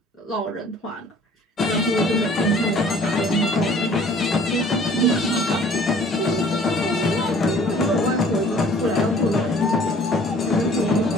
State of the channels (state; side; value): normal; both; correlation 0.53